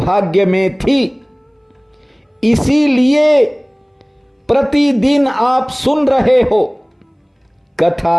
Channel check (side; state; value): both; identical; correlation 1.00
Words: में थी, इसीलिए प्रतिदिन आप सुन रहे हो।